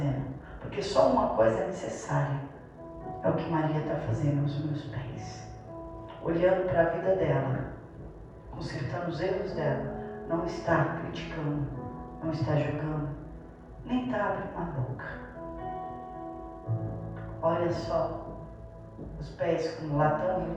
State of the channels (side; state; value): both; identical; correlation 1.00